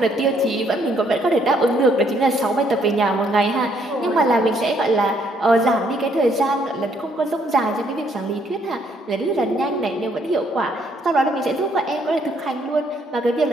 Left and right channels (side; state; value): both; normal; correlation 0.69